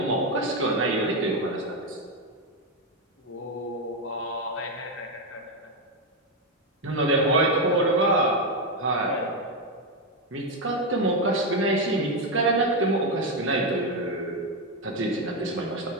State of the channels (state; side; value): normal; both; correlation 0.07